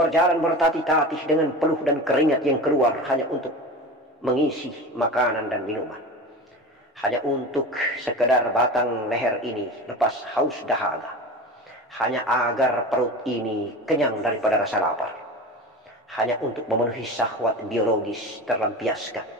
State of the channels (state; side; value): normal; both; correlation 0.30